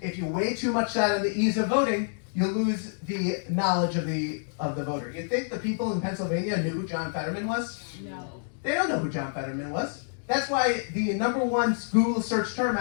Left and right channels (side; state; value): right; silent; digital silence